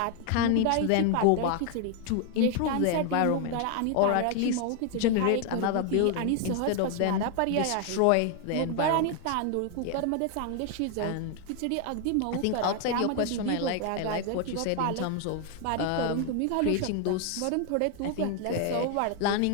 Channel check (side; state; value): both; different; correlation 0.00